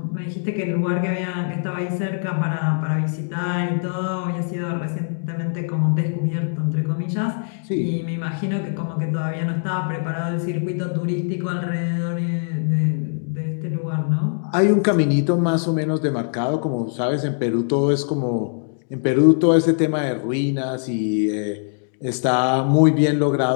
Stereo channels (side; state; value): right; silent; digital silence